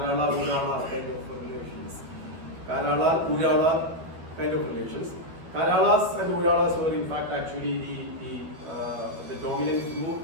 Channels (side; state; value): left; late; 12 ms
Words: Urala kind of relations. Karala Urala kind of relations. Karalas and Uralas were in fact actually the dominant group